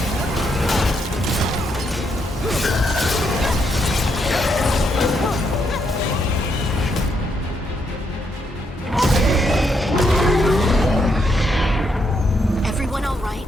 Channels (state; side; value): normal; both; correlation 0.77